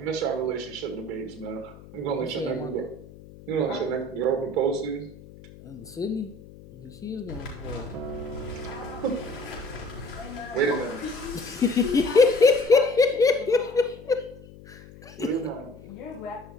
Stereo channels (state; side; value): noise; left; hum, 19 dB below the sound